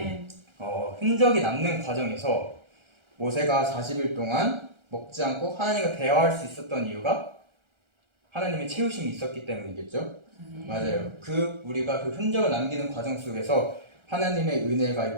흔적이 남는 과정에서 모세가 40일 동안 먹지 않고 하나님과 대화할 수 있었던 이유가 하나님의 채우심이 있었기 때문이겠죠. 맞아요. 우리가 그 흔적을 남기는 과정 속에서 하나님의 은혜가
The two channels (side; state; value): left; late; 1.3 ms